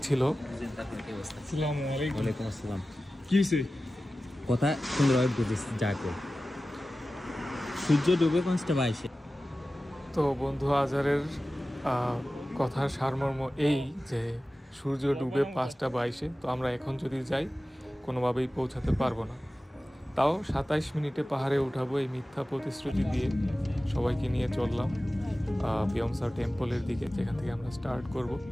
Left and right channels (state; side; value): normal; both; correlation 0.95